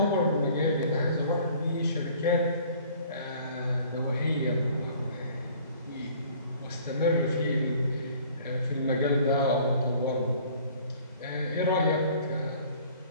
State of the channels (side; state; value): both; inverted; correlation -0.53